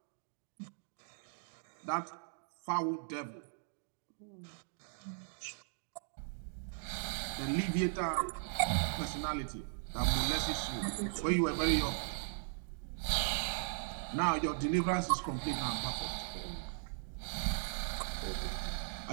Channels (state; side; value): silent; left; digital silence